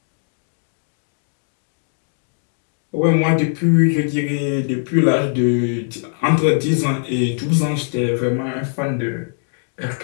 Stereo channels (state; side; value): silent; right; digital silence